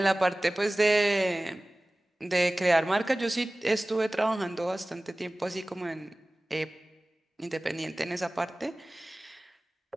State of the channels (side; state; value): both; normal; correlation 0.98